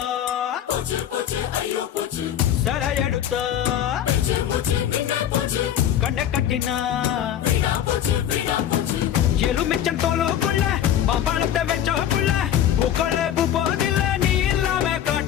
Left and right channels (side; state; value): right; quieter; 10.5 dB